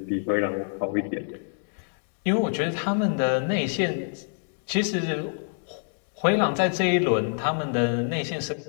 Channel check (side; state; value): right; silent; 61 dB below the other